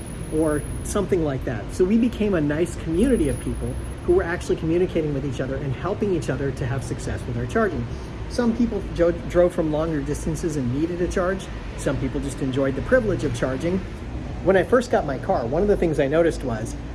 or something like that. So we became a nice community of people who were actually communicating with each other and helping each other to have success with our charging. Some people drove from longer distances and needed a charge. Some people just enjoyed the privilege of charging. When I first got my car, one of the things I noticed was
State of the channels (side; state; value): both; identical; correlation 1.00